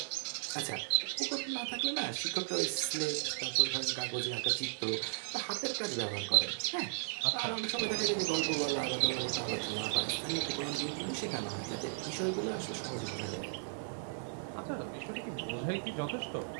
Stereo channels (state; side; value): silent; left; digital silence